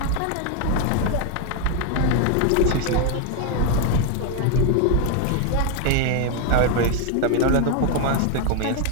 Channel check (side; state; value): both; different; correlation 0.01